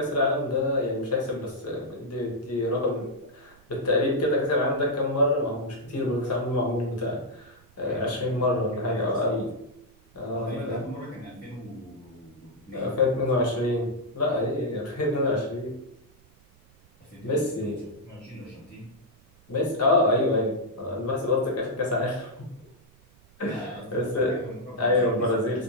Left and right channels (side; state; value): right; noise; rumble, 29 dB below the sound